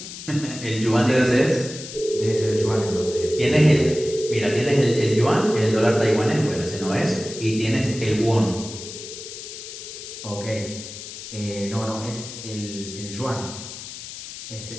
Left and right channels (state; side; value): noise; left; hiss, 11 dB below the sound